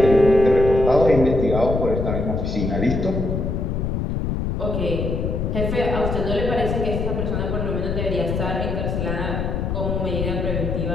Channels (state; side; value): noise; left; rumble, 1 dB below the sound